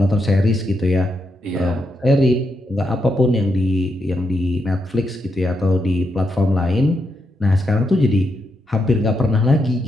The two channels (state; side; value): normal; both; correlation 0.82